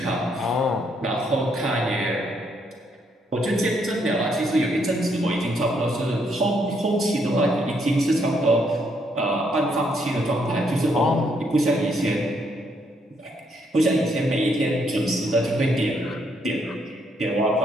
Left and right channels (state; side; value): normal; both; correlation 0.73